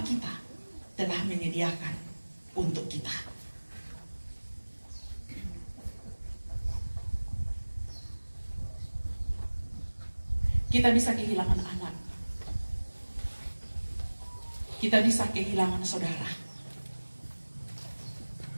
kita telah menyediakan untuk kita. Kita bisa kehilangan anak. Kita bisa kehilangan saudara.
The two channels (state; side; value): inverted; both; correlation -1.00